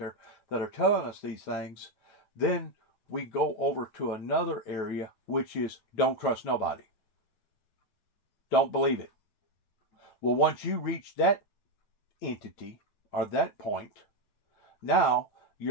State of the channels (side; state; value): right; late; 9.2 ms